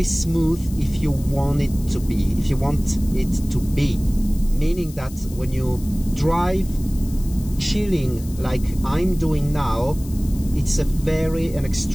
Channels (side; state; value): left; noise; hiss, 19 dB below the sound